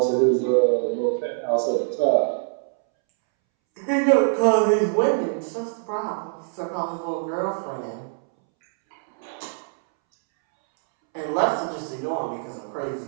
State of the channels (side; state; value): left; silent; 63 dB below the other